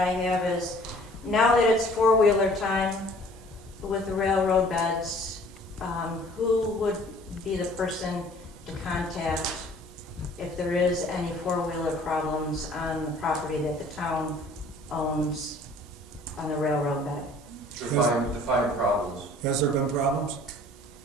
have is, now that it's four-wheeler time with the railroad beds, who would be the person to contact if there is any four-wheeler problems on the property that the town owns on the railroad bed? Define problems. Has there been problems?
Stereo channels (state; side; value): normal; both; correlation 0.53